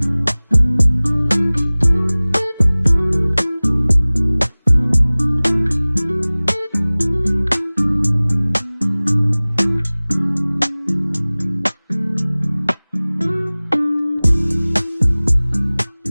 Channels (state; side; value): inverted; both; correlation -1.00